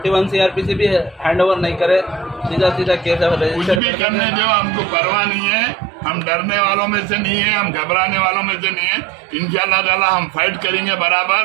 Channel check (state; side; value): drops out; left; at 3.8 s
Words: CRPC भी हैंड ओवर नहीं करे, सीधा केस कुछ भी करने दो, हमको परवाह नहीं है। हम डरने वालों में से नहीं है, हम घबराने वालों में से नहीं है। इंशाअल्लाह ताला हम फाइट करेंगे